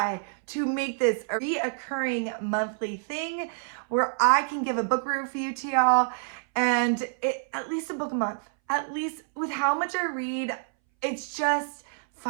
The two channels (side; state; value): left; silent; 60 dB below the other